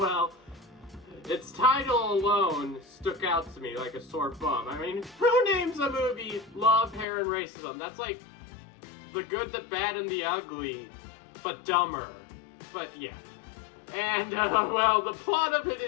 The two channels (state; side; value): drops out; right; at 7.1 s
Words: its title alone stuck out to me like a sore thumb. I mean, who names a movie Love, Hair, and Racism? That's The Good, the Bad, and the Ugly, but dumber. But, yeah. And, well, the plot of it